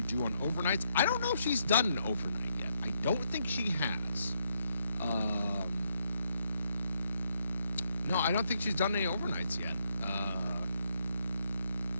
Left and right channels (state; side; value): inverted; both; correlation -0.76